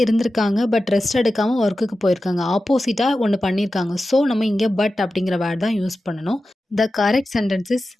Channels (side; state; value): both; normal; correlation 0.93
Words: இருந்திருக்காங்க பட் ரெஸ்ட் எடுக்காமல் ஒர்க்குக்கு போயிருக்காங்க. ஆப்போசிட்டாக ஒன்று பண்ணியிருக்காங்க. ஸோ நம்ம இங்கே பட் அப்படிங்கிற வேர்ட் தான் யூஸ் பண்ணணும். The correct sentence is